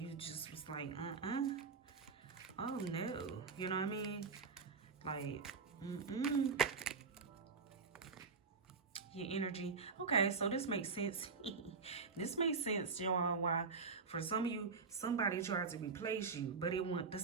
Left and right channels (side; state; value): left; quieter; 4.8 dB